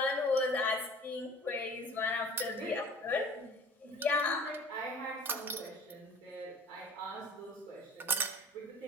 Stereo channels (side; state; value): both; normal; correlation 0.44